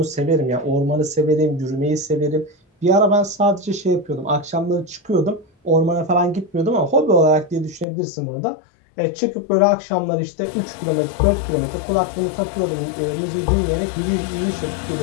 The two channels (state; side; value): drops out; right; at 7.9 s